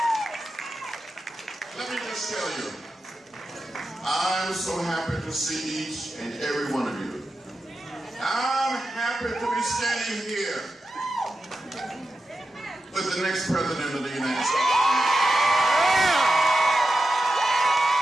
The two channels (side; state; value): both; normal; correlation 0.91